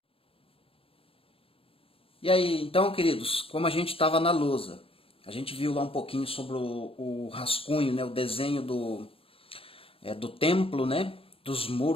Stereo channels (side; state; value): right; late; 0.27 ms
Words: E aí, então, queridos, como a gente estava na lousa, a gente viu lá um pouquinho sobre o rascunho, né, o desenho do templo, né, dos